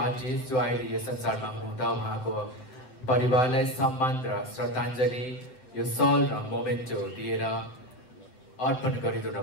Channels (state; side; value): late; right; 7.9 ms